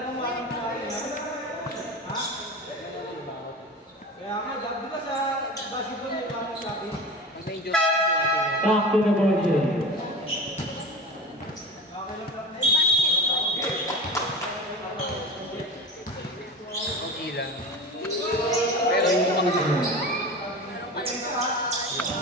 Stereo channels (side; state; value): both; normal; correlation 0.31